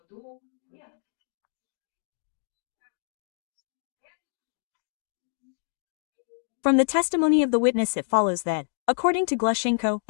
From the testimony of the witness it follows that, according to Glushenko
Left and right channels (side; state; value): right; silent; digital silence